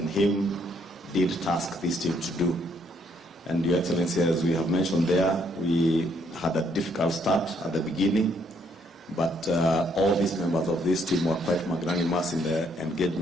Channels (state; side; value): normal; both; correlation 0.69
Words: him did task this team to do. And Your Excellency, as we have mentioned there, we had a difficult start at the beginning, but all these members of this team were quite magnanimous in the